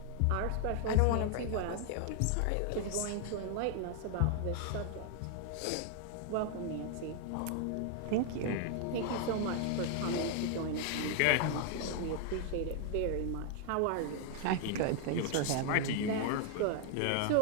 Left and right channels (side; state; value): both; different; correlation 0.00